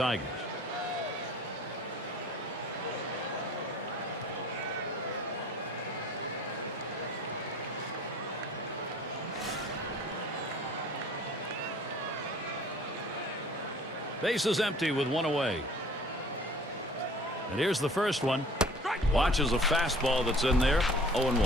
Base is empty with one away. And here's the first one. Watches a fastball that's in there.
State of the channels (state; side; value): normal; both; correlation 0.49